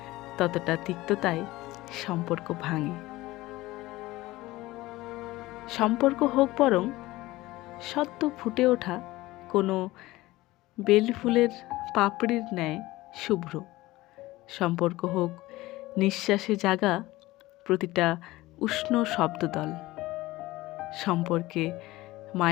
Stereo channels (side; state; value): right; quieter; 18.6 dB